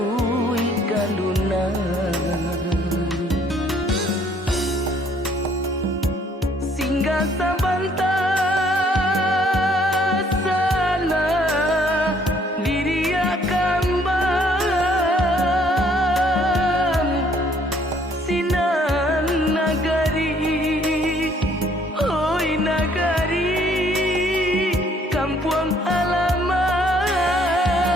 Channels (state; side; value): normal; both; correlation 0.63